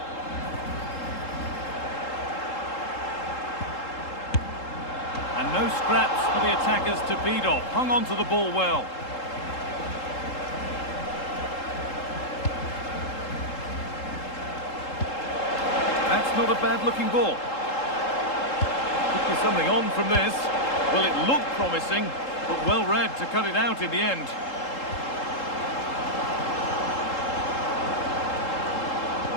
And no scraps for the attackers to beat off. Hung on to the ball well. That's not a bad-looking ball. Could be something on from this. Well, it looked promising, but well read to cut it out in the end.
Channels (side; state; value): right; late; 3.7 ms